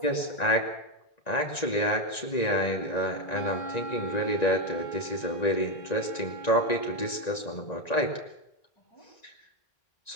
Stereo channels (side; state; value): right; late; 1.9 ms